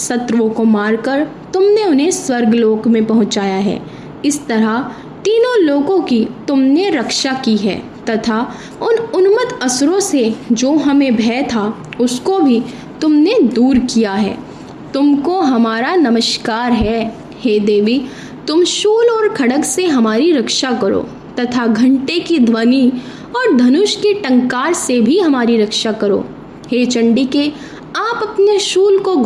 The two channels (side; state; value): both; identical; correlation 1.00